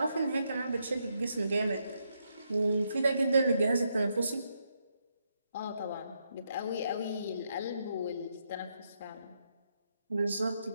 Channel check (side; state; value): both; inverted; correlation -0.79